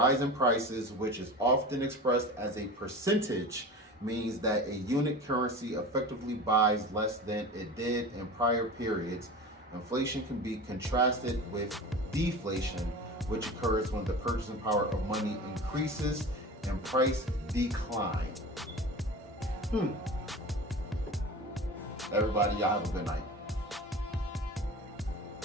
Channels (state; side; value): normal; both; correlation 0.33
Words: in prices, which is often expressed as a percentage, means that a unit currency effectively buys less than it did in prior periods. Inflation can be contrasted with deflation, which occurs when the purchasing power of money increases and price decline. Everybody, y'all have a good night.